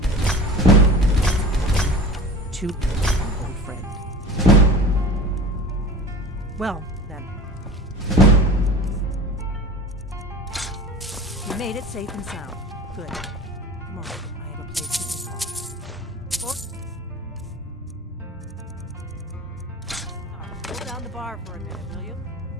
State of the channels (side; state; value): both; normal; correlation 0.37